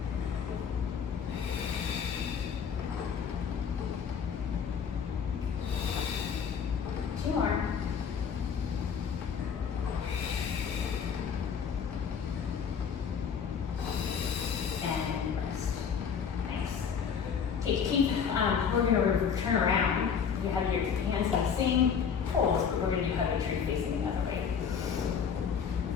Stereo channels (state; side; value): quieter; right; 6.9 dB